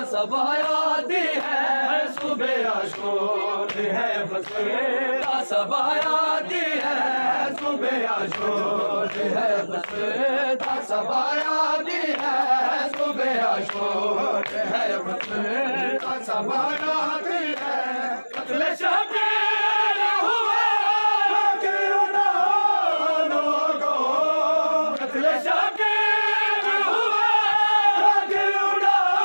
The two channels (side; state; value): both; inverted; correlation -1.00